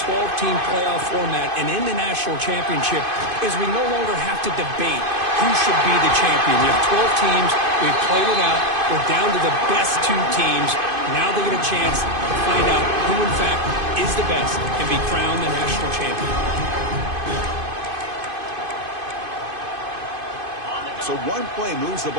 12-team playoff format and in the national championship is we no longer have to debate who should be the champion. You have 12 teams. We've played it out. We're down to the best 2 teams. Now they get a chance to find out who, in fact, is the best and be crowned the national champion. So one play moves the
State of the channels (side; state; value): left; late; 2.5 ms